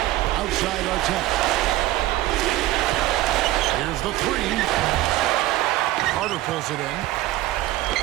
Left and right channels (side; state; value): left; quieter; 16.1 dB